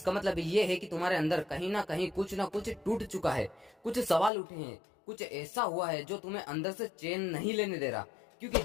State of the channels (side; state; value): right; drops out; at 4.3 s